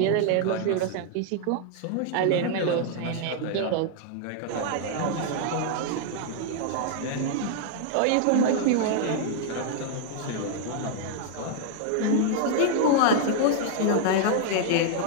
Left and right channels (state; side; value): different; both; correlation 0.00